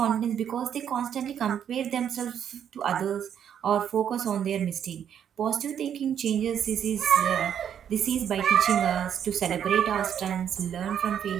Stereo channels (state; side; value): quieter; left; 9.0 dB